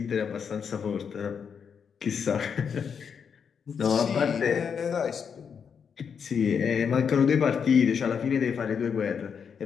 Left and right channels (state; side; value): quieter; right; 6.8 dB